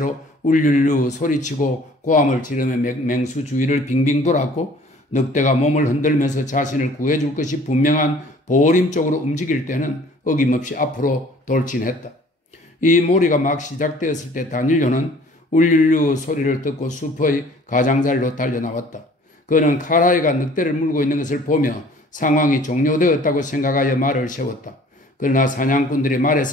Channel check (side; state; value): both; normal; correlation 0.52